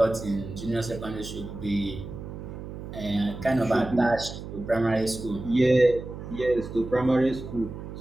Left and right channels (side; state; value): right; noise; hum, 10 dB below the sound